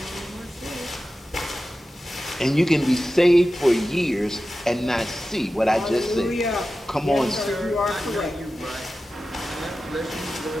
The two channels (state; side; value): normal; both; correlation 0.94